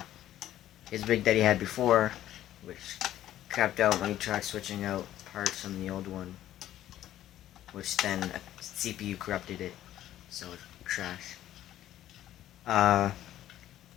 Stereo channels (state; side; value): quieter; right; 12.8 dB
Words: his rig that he had before, which crapped out when he tried switching out parts from the old one, which then a CPU corrupted it, so it crashed.